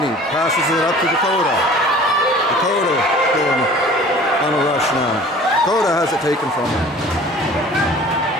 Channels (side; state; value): both; normal; correlation 0.46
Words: passes it up to Dakota. Dakota going on a rush now. Dakota has it taken from him.